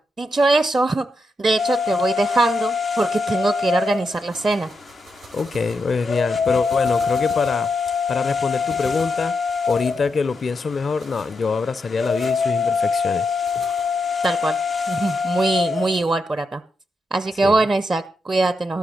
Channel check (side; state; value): both; normal; correlation 0.84